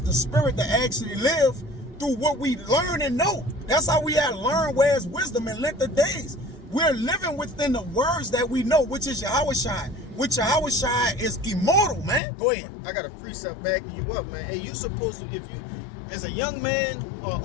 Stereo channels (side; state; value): right; drops out; at 12.2 s